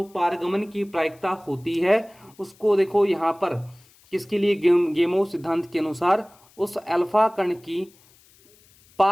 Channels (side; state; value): left; noise; hiss, 29 dB below the sound